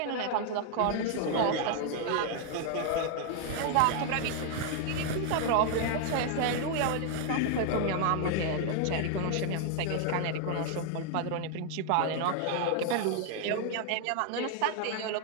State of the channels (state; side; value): different; both; correlation 0.00